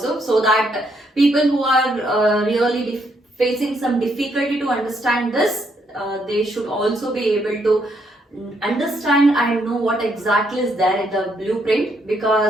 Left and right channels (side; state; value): both; normal; correlation 0.74